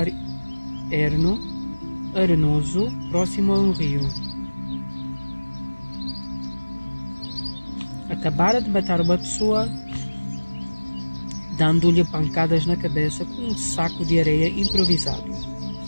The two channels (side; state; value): both; inverted; correlation -1.00